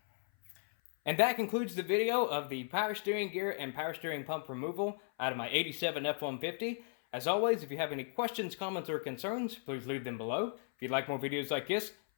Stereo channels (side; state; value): right; silent; 54 dB below the other